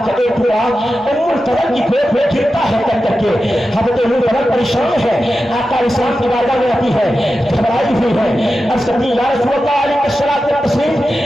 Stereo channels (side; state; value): both; normal; correlation 0.92